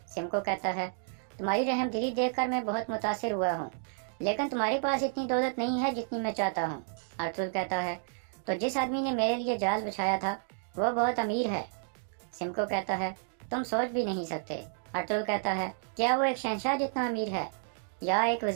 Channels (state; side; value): silent; left; digital silence